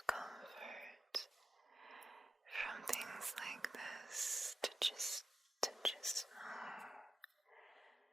comfort from things like this to just know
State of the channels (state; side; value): normal; both; correlation 0.90